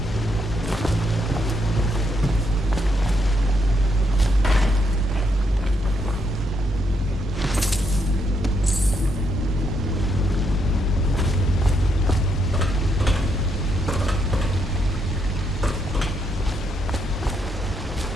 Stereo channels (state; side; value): normal; both; correlation 0.77